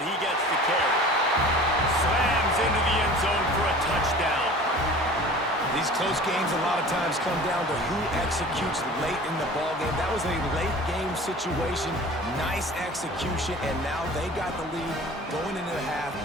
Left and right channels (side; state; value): both; normal; correlation 0.42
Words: he gets the carry. Slams into the end zone for a touchdown. These close games a lot of times come down to who executes late in the ballgame. That was a late game situation, nice execution, and now they got the lead going into the half,